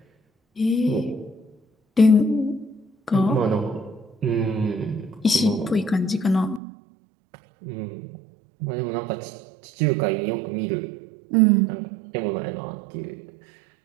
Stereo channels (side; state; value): left; drops out; at 6.6 s